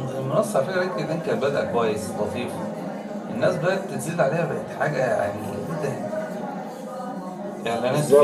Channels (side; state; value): both; identical; correlation 1.00